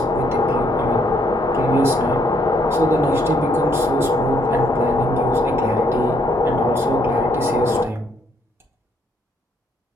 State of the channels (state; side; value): normal; both; correlation 0.70